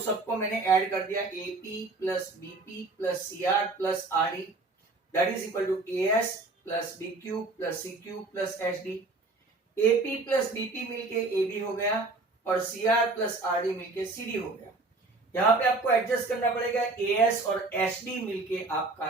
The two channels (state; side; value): quieter; left; 3.4 dB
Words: मैंने ऐड कर दिया, AP plus BP plus CR plus RD, that is equal to AS plus BQ plus CQ plus SD. AP plus BP मिलके एबी हो गया और सीआर प्लस आरडी मिलके सीडी हो गया. यहाँ पे आपको एडजस्ट करना पड़ेगा, एएस और एसडी मिलके